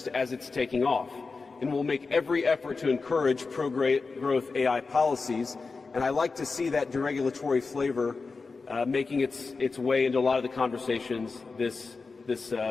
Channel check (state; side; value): quieter; right; 4.3 dB